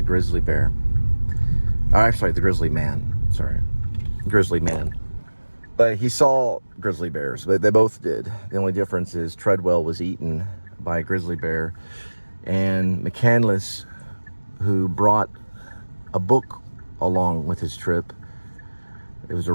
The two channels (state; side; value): inverted; both; correlation -1.00